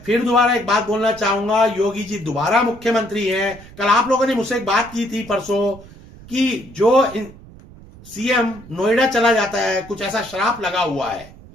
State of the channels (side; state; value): right; noise; rumble, 20 dB below the sound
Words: फिर दोबारा एक बात बोलना चाहूंगा, योगी जी दोबारा मुख्यमंत्री हैं। कल आप लोगों ने मुझसे एक बात की थी परसों कि जो सीएम नोएडा चला जाता है, कुछ ऐसा श्राप लगा हुआ है,